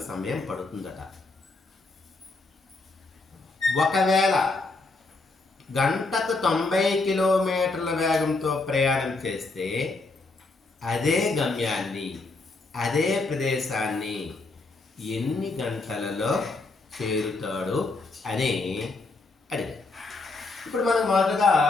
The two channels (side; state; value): right; quieter; 3.5 dB